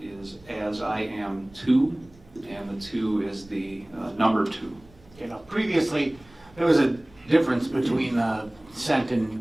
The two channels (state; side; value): noise; right; rumble, 26 dB below the sound